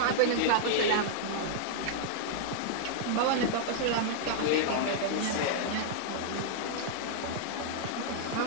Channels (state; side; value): different; both; correlation -0.01